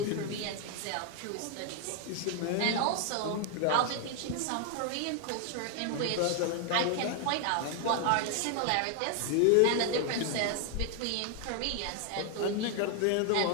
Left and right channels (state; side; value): different; both; correlation 0.00